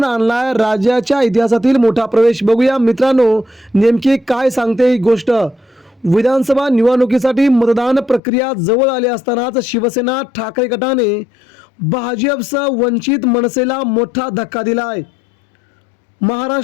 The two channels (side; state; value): right; drops out; at 8.2 s